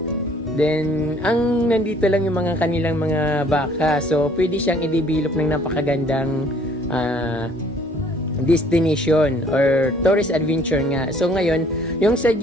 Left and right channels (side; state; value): both; normal; correlation 0.58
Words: Then, nandito lang yung mga kanilang mga baka. So, pwede siyang i-develop ng napakagandang destination or tourist adventure nga. So, ngayon, yung